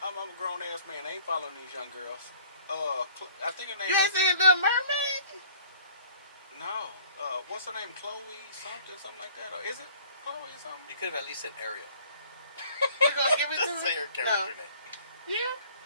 grown ass man. I ain't following these young girls. I think her name. You ain't seen Little Mermaid? No. What's her name? Chloe something like that, or is it Chloe something? You could have at least said Ariel. You gonna give it to me? Say her character name. Yeah.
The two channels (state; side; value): inverted; both; correlation -0.53